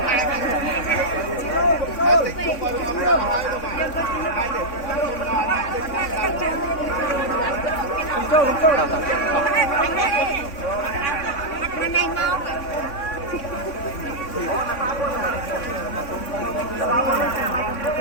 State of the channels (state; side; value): late; right; 3.6 ms